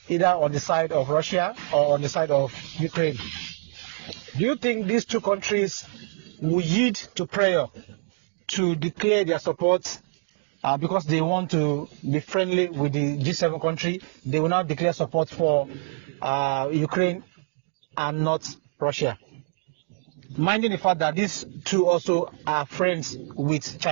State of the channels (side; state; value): left; silent; digital silence